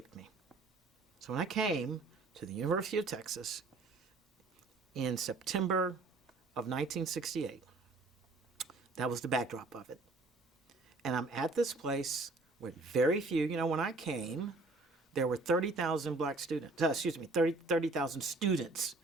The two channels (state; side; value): quieter; left; 3.3 dB